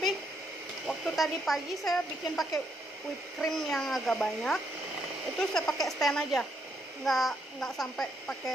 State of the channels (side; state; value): both; normal; correlation 0.75